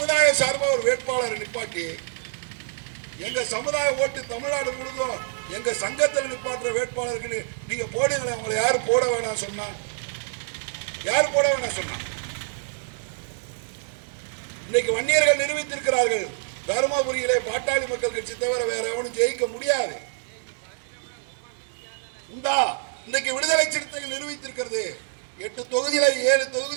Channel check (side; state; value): left; silent; digital silence